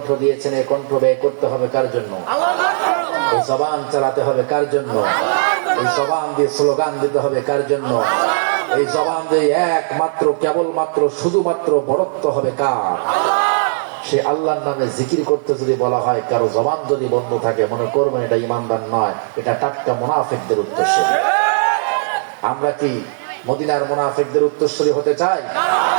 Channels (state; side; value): silent; left; 61 dB below the other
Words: দিয়েছেন, এই কণ্ঠ ব্যয় করতে হবে কার জন্য? এই জবান চালাতে হবে কার জন্য? এই জবান দিয়ে স্লোগান দিতে হবে কার জন্য? এই জবান দিয়ে একমাত্র কেবলমাত্র শুধুমাত্র বরত্ব হবে কার? সে আল্লাহর নামে জিকির করতে যদি বলা হয়, কারো জবান যদি বন্ধ থাকে, মনে করবেন এটা ইমানদার নয়, এটা টাটকা মুনাফিকদের উত্তরসূরি। আমরা কি মদিনার মুনাফিকদের উত্তরসূরি হতে চাই?